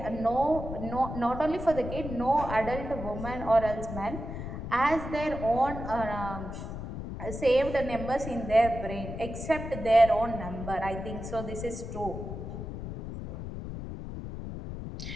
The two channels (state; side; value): noise; left; rumble, 7 dB below the sound